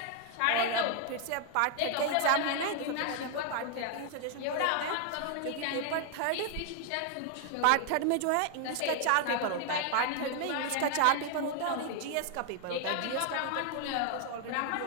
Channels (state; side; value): different; both; correlation 0.00